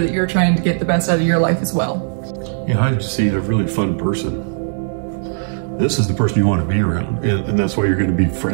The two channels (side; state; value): left; silent; digital silence